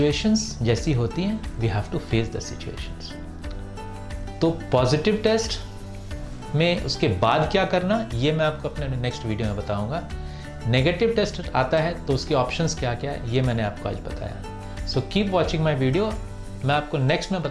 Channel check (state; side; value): identical; both; correlation 1.00